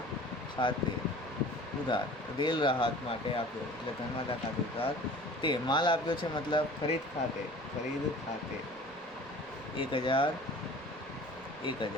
ખાતે ઉધાર, રેલ રાહત માટે આપ્યો એટલે ધર્માદા ખાતે ઉધાર. તે માલ આપ્યો છે મતલબ ખરીદ ખાતે, 1000.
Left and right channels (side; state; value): right; noise; rumble, 28 dB below the sound